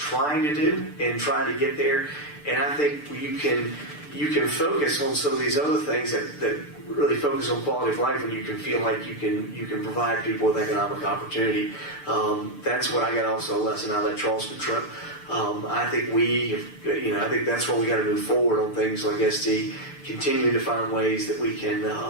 to do and trying to get there. And I think you can focus on some of these other things that really focus on quality of life, and you can feel like you can provide people with economic opportunity. That's what I got also a lesson out of that Charleston trip. I think I think that's where we got to move forward on things like SD, continuing to find ways that we can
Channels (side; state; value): right; late; 6.8 ms